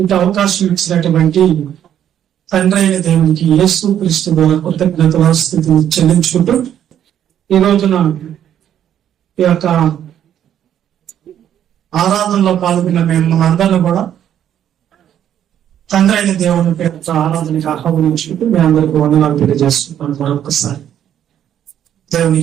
అవకాశం ఇచ్చినటువంటి తండ్రి అయిన దేవునికి యేసు క్రీస్తు ద్వారా కృతజ్ఞతల స్థితిని చెల్లించుకుంటూ ఈ రోజున ఈ యొక్క ఆరాధనలో పాల్గొన్న మేము అందరినీ కూడా తండ్రి అయిన దేవుని పేరుతో ఆరాధనకి ఆహ్వానించుకుంటూ మీ అందరికీ వందనాలు తెలియజేస్తున్నాను. మరొకసారి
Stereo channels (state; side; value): quieter; left; 10.2 dB